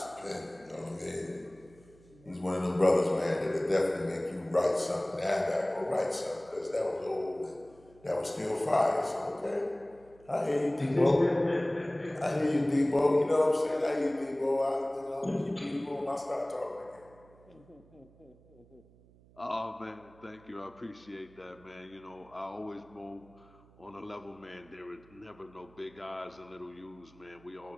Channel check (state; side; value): noise; right; hum, 26 dB below the sound